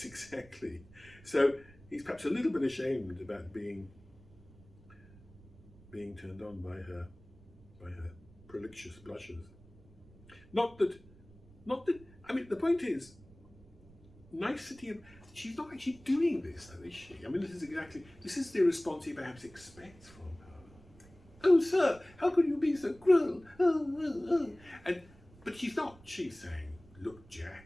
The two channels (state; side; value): noise; right; rumble, 23 dB below the sound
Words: exactly. So he's perhaps a little bit ashamed about being turned on by her prolixious blushes. Not that. I mean, the point is, nicety of. She's not actually doing this, though, is she? I mean, this is the response he perhaps expects from her. Oh, sir, how could you be so cruel? But she's not. She's saying, look,